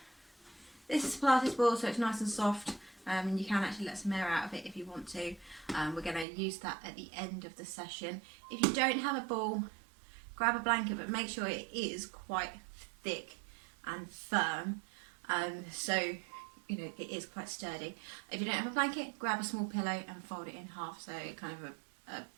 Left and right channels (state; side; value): drops out; left; at 6.2 s